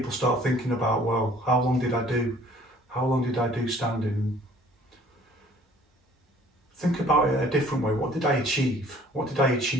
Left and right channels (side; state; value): both; normal; correlation 0.55